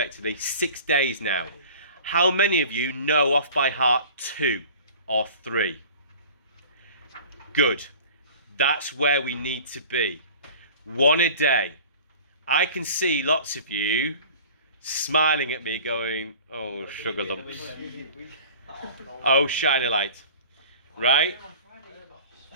6 days now. How many of you know off by heart 2 or 3? Good. That's where we need to be. 1 a day. I can see lots of you smiling at me going, oh, sugar lumps. Oh, shine a light. Right?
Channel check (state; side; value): inverted; both; correlation -0.43